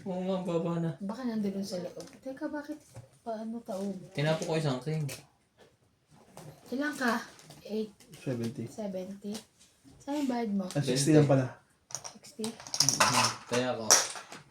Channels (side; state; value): both; identical; correlation 1.00